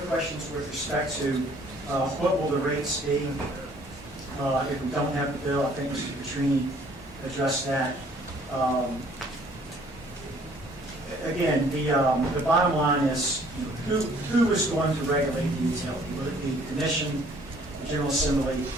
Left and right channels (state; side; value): normal; both; correlation 0.59